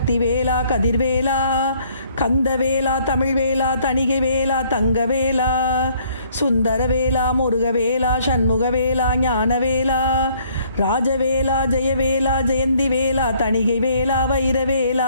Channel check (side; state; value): both; inverted; correlation -0.63